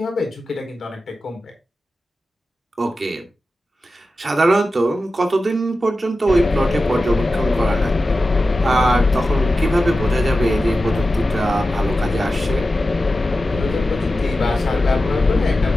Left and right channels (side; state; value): both; normal; correlation 0.93